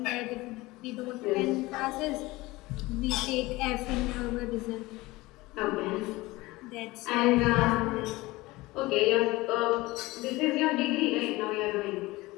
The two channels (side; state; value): right; quieter; 20.5 dB